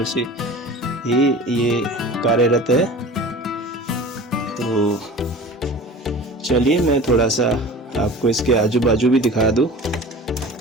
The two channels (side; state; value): both; normal; correlation 0.38